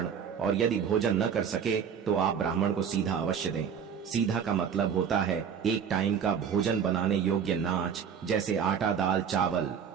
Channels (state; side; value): quieter; left; 7.4 dB